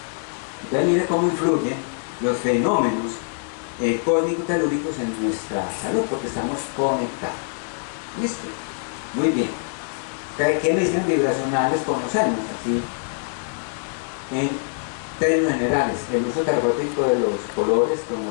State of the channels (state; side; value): silent; right; digital silence